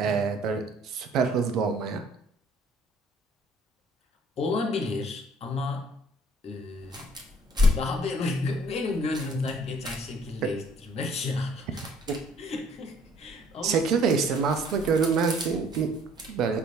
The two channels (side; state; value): both; normal; correlation 0.58